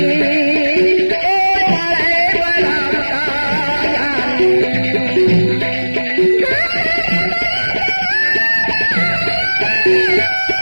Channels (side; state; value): both; inverted; correlation -1.00